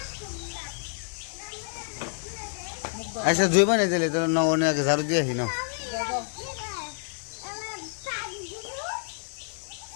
আচ্ছা জুইবা নিয়ে দিলে তো অনেক ঝাড়ু দিয়ে আসি না।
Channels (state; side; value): silent; right; digital silence